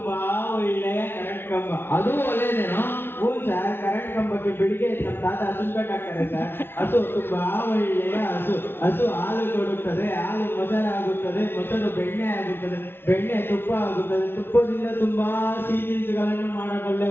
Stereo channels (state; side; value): late; right; 0.11 ms